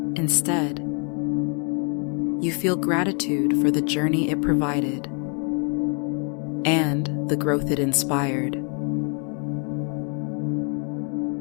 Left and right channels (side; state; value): right; quieter; 39.0 dB